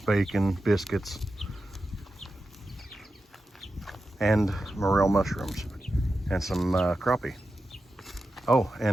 bacon, biscuits, and morel mushrooms, and some crappie. Oh,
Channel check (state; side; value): normal; both; correlation 0.91